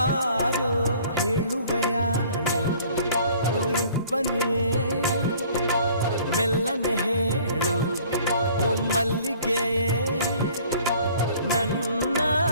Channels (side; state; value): both; inverted; correlation -0.53